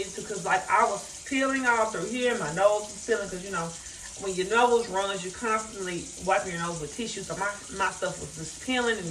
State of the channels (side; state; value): both; identical; correlation 1.00